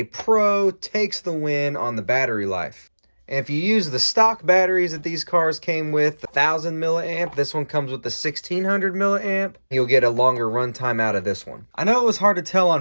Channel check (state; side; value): inverted; both; correlation -1.00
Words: Pro takes the win on the battery life. And if you use the stock batteries that these cars came with, 1000 milliamp, this one comes with the 1600 milliamp, you'll get a longer runtime out of this one. I know it was hard to tell